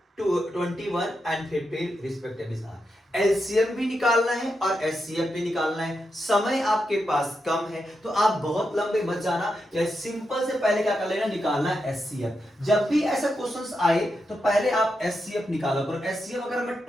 21 and 15 respectively are. LCM भी निकालना है और एचसीएफ भी निकालना है। समय आपके पास कम है तो आप बहुत लंबे मत जाना, या सिंपल से पहले क्या कर लेना, निकालना है एचसीएफ। जब भी ऐसा क्वेश्चंस आए तो पहले आप एचसीएफ निकालो करो। एचसीएफ अगर मैं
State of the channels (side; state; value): both; normal; correlation 0.86